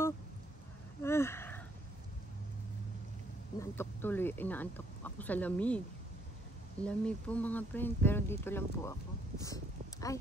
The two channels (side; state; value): both; normal; correlation 0.69